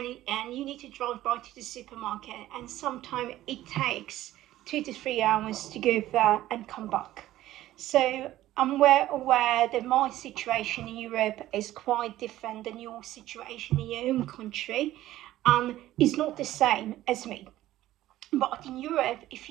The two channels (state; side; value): quieter; left; 14.6 dB